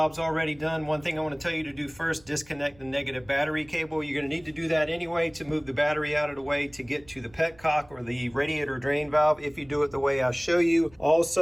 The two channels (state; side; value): noise; right; rumble, 26 dB below the sound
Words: already done. One thing I want to tell you to do first, disconnect the negative battery cable. You're going to need to do that anyway to move the battery out of the way to get to the petcock or the radiator drain valve if you do it the way I show you.